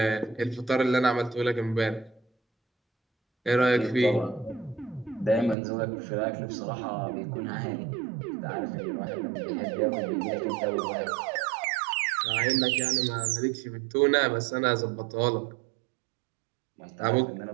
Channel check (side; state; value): left; drops out; at 5.6 s